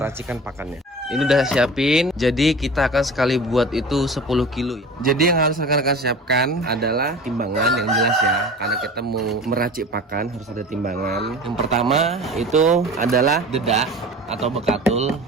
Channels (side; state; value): both; normal; correlation 0.37